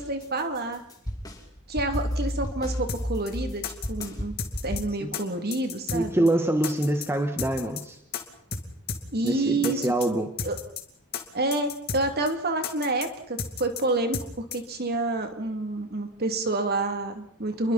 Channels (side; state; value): both; normal; correlation 0.40